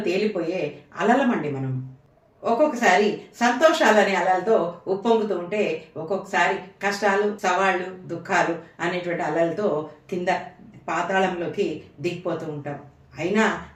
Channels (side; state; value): both; identical; correlation 1.00